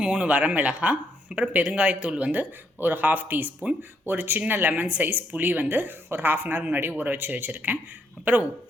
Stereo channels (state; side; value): normal; both; correlation 0.74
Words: 3 வரமிளகாய், அப்புறம் பெருங்காயத்தூள் வந்து ஒரு 1/2 டீஸ்பூன், ஒரு சின்ன லெமன் சைஸ் புளி வந்து ஒரு 1/2 அன் ஹவர் முன்னாடி ஊற வச்சுருக்கேன். அப்புறம்